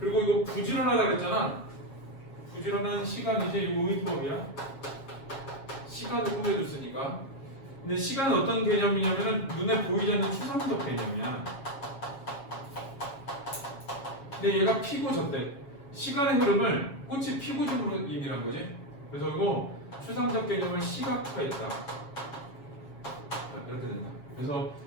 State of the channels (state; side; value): late; right; 7.3 ms